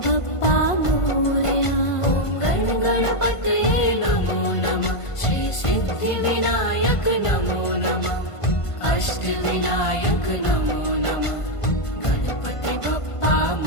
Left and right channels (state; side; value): late; right; 1.5 ms